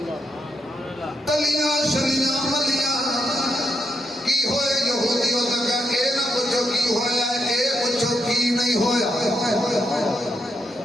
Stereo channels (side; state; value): both; normal; correlation 0.81